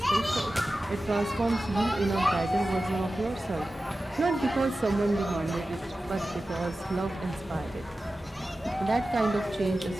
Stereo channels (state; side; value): normal; both; correlation 0.94